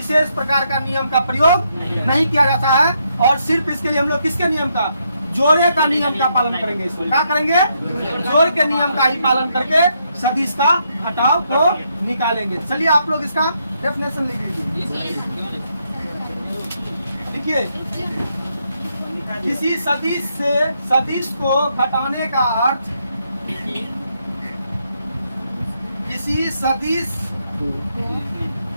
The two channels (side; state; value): both; inverted; correlation -0.77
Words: प्रकार का नियम का प्रयोग नहीं किया जाता है, और सिर्फ इसके लिए हम लोग किसके नियम का, जोड़े का नियम का पालन करेंगे। इसमें क्या करेंगे, जोड़ के नियम का ही पालन करके सदिश का घटाव को निकालेंगे। चलिए आप लोग इसका डेफिनेशन लिख लीजिए। देखिए, किसी सदिश से सदिश को घटाने का अर्थ, किसी सदिश